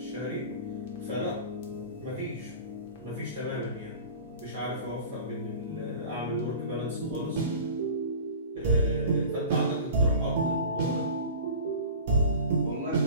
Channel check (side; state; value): both; inverted; correlation -0.39